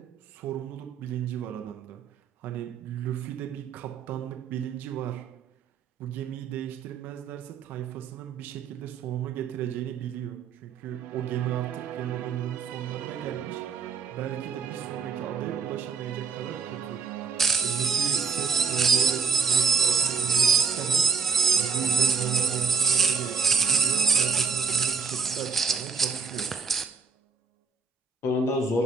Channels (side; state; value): left; quieter; 5.4 dB